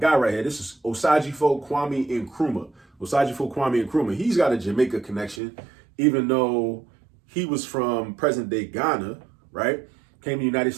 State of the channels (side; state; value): left; drops out; at 5.4 s